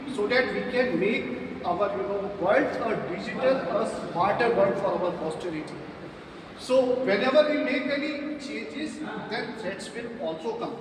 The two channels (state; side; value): identical; both; correlation 1.00